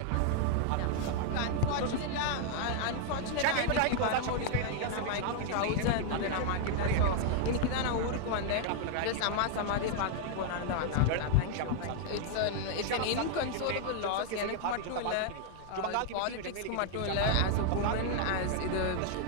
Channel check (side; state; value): both; different; correlation 0.00